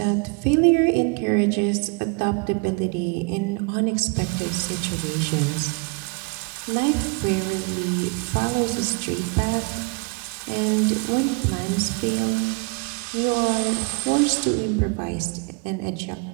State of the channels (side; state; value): left; quieter; 30.9 dB